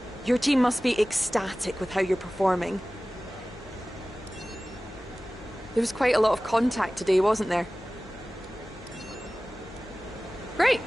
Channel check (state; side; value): noise; left; hum, 22 dB below the sound